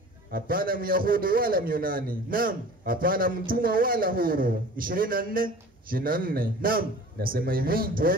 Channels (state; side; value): normal; both; correlation 0.42